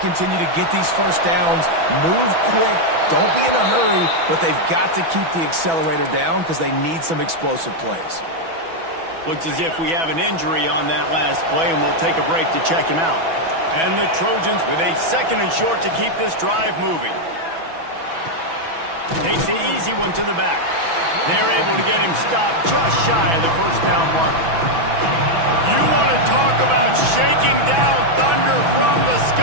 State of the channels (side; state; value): left; late; 6.1 ms